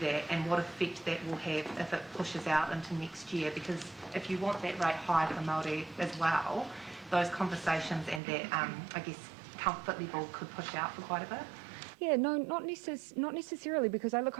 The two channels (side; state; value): left; drops out; at 8.2 s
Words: and what effect that will have if it pushes out into next year? Because if you want that rate high for Māori as well, those conversations and that, I guess, comfort level could push out for quite a bit? Yeah, no, not necessarily, because